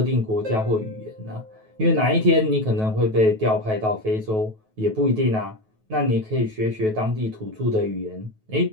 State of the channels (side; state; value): left; late; 9.3 ms